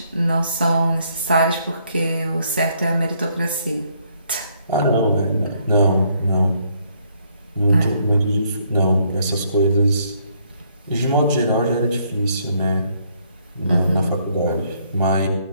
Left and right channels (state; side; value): inverted; both; correlation -0.70